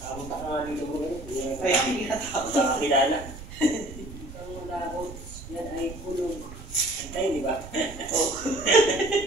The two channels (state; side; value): noise; right; rumble, 13 dB below the sound